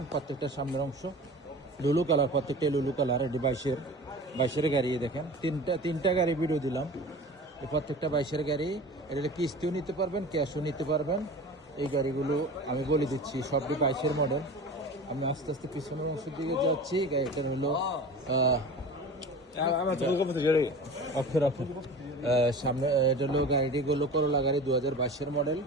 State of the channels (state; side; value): normal; both; correlation 0.36